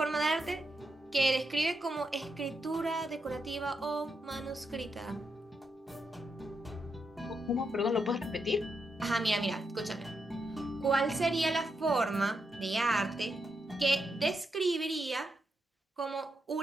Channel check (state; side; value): normal; both; correlation 0.83